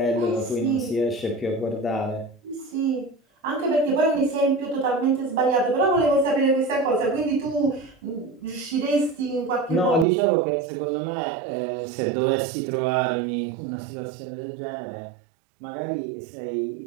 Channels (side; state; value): left; drops out; at 10.1 s